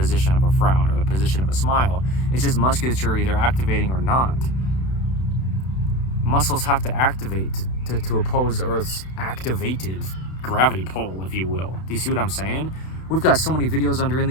of a frown or the position of a smile. It's just musculature either activating or not. Muscles have to activate to oppose Earth's activated gravity pull, if you will. Do you see what I'm saying? We've got so many videos under In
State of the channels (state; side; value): late; right; 32 ms